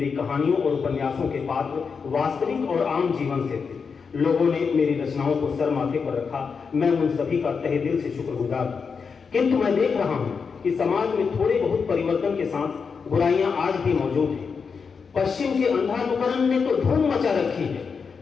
कहानियों और उपन्यासों के पात्र वास्तविक और आम जीवन से थे। लोगों ने मेरी रचनाओं को सर माथे पर रखा। मैं उन सभी का तहे दिल से शुक्रगुजार हूं। किंतु मैं देख रहा हूं कि समाज में थोड़े बहुत परिवर्तन के साथ बुराइयां आज भी मौजूद हैं। पश्चिम के अंधानुकरण ने तो धूम मचा रखी है।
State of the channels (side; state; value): right; quieter; 5.6 dB